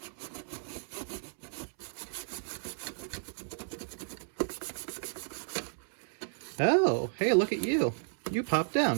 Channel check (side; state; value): left; silent; 56 dB below the other